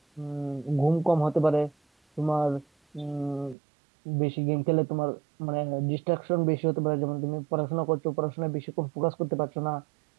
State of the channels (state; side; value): drops out; left; at 3.6 s